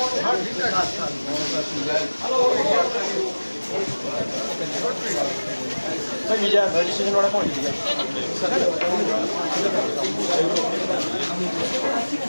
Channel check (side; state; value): both; inverted; correlation -1.00